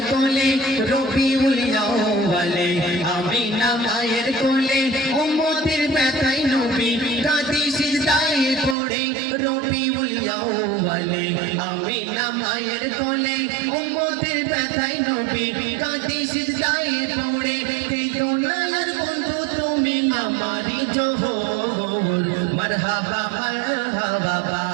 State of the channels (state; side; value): drops out; left; at 8.8 s